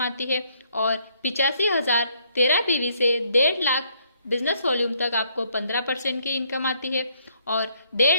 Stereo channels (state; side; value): inverted; both; correlation -0.69